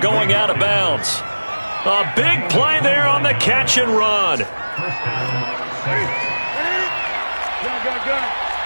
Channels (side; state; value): both; inverted; correlation -1.00